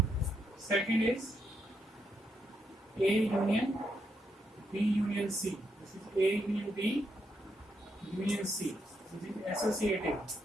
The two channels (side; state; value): both; normal; correlation 0.79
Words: Second is A union B union C. This is A union B union C. This is associative